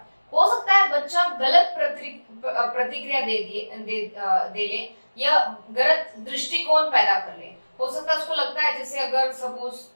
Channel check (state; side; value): inverted; both; correlation -1.00